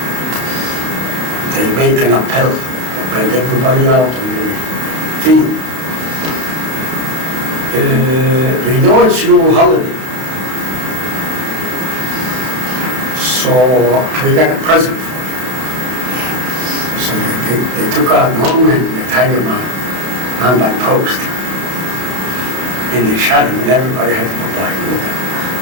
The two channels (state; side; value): late; left; 32 ms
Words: They make an appel, bring everybody out in the field. We know it's your holiday. So we got a present for you. So they took out one man and they tied him on by post. And they shot him and everybody had to go by and look at him.